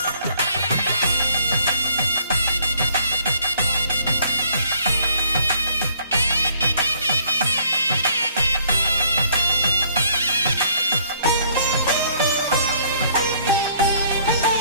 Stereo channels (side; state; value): both; inverted; correlation -0.62